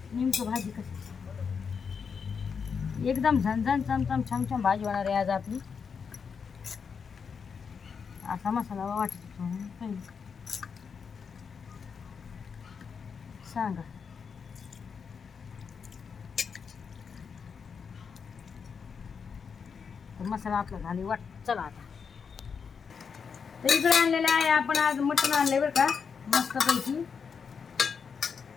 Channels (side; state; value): right; quieter; 6.1 dB